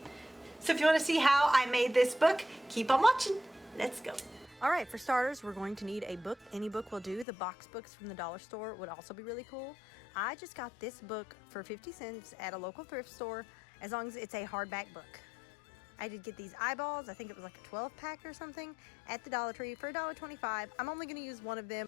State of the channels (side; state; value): right; drops out; at 7.2 s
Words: So if you want to see how I made this book, keep on watching. Let's go. Alright, for starters, we're going to need a book. Any book will do. The box books from the dollar store would also be really cool. I just got this book for 50 cents at a local thrift store, as long as it's a hardback book. I did get these eyeballs. I think it was like a 12-pack or something at the Dollar Tree for $1.25. I'm only going to use one of them.